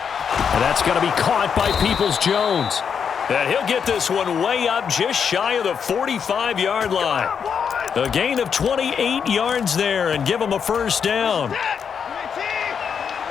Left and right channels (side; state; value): right; quieter; 7.0 dB